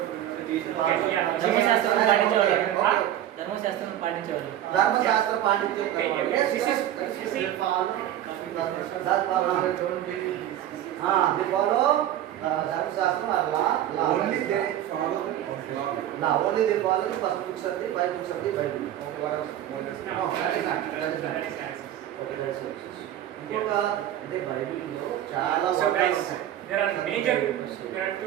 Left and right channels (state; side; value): quieter; left; 12.0 dB